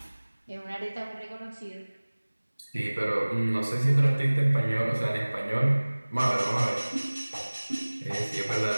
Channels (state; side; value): inverted; both; correlation -1.00